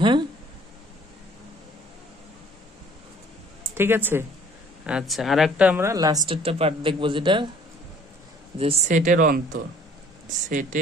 হ্যাঁ, ঠিক আছে। আচ্ছা, আর একটা আমরা লাস্টেরটা পার্ট দেখবো, যেটা যে সেটের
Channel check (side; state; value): both; normal; correlation 0.55